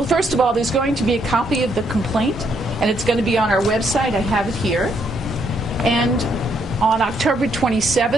first of all, there's going to be a copy of the complaint, and it's going to be on our website. I have it here. And on October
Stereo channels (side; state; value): both; normal; correlation 0.73